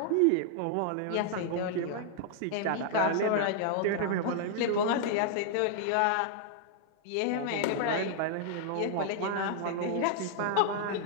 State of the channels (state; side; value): different; both; correlation -0.01